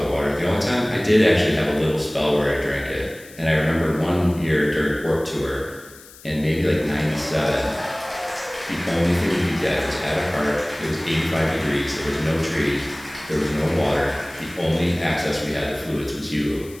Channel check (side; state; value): left; noise; hiss, 21 dB below the sound